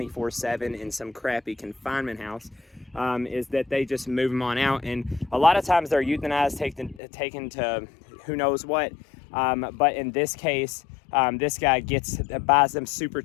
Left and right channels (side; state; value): right; drops out; at 7.0 s